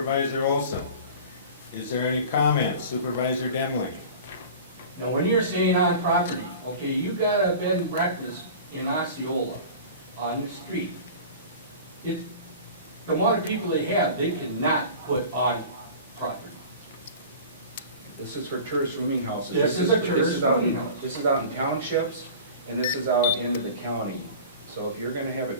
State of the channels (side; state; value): both; inverted; correlation -0.38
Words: Olson? Is there any comments? Supervisor Demling? Now, when you're saying on property, okay, you got a bed and breakfast in Osceola on the street. The amount of people they have, they cannot put on property. This is for tourist rooming houses. This is a tourist rooming house. This is out in townships, and this is out into the county. So if you're gonna have a